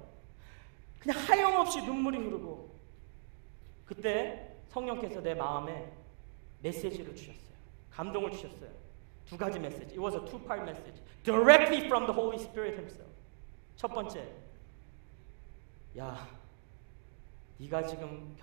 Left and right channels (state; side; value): silent; left; digital silence